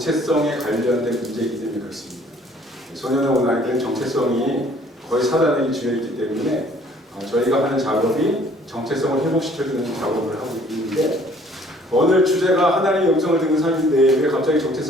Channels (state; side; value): normal; both; correlation 0.57